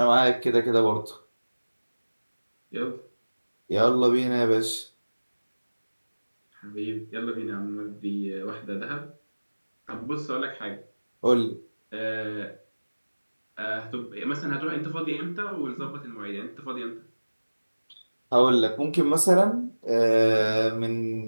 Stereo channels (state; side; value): inverted; both; correlation -1.00